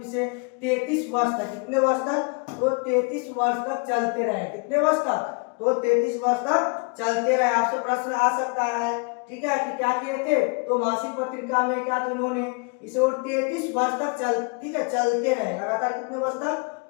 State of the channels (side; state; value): right; quieter; 32.8 dB